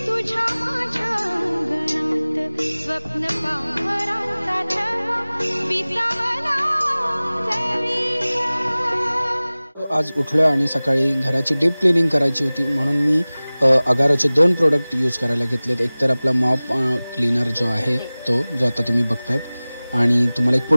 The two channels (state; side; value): inverted; both; correlation -0.99